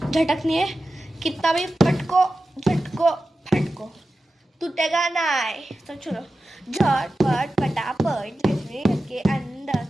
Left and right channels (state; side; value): normal; both; correlation 0.93